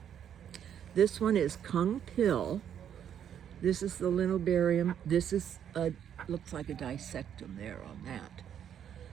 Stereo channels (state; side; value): quieter; left; 9.2 dB